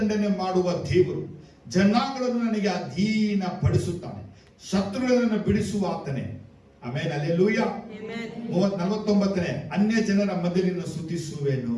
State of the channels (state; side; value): identical; both; correlation 1.00